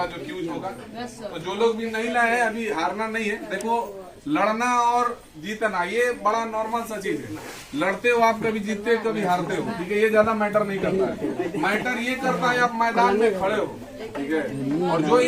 जो क्यूज होगा। तो जो लोग भी नहीं लाए हैं अभी हारना नहीं है। देखो, लड़ना और जीतना ये बड़ा नॉर्मल सा चीज है। लड़ते हो आप, कभी जीतते हो कभी हारते हो, ठीक है, ये ज्यादा मैटर नहीं करता है। मैटर ये करता है आप मैदान में खड़े हो, ठीक है। और जो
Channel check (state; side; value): identical; both; correlation 1.00